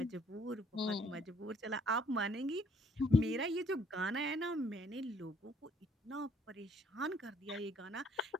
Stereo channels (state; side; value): normal; both; correlation 0.64